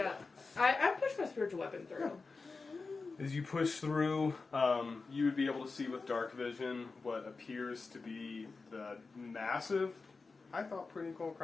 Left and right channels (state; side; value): quieter; right; 4.2 dB